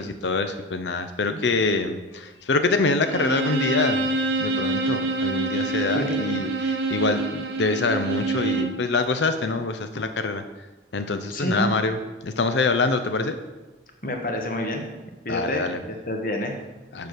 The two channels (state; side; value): normal; both; correlation 0.22